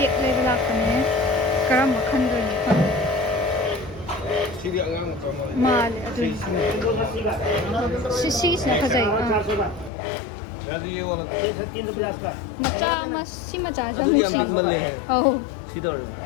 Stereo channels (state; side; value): drops out; right; at 9.9 s